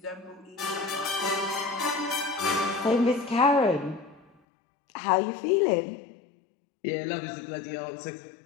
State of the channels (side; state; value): right; drops out; at 4.3 s